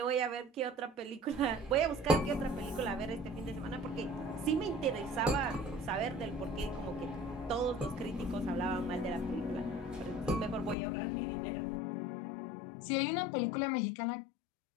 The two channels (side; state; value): right; drops out; at 10.8 s